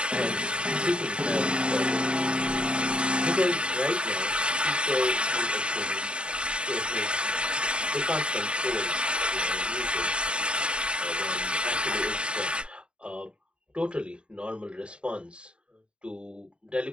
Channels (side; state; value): left; late; 0.054 ms